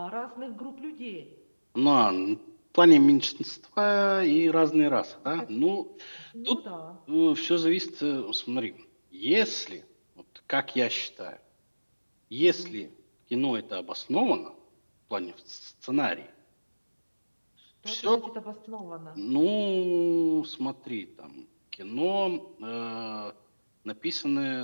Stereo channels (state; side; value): inverted; both; correlation -1.00